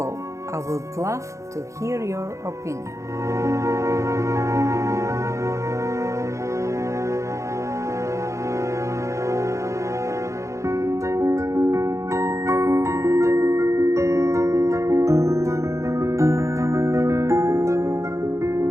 I would love to hear your opinion.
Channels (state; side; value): late; left; 0.15 ms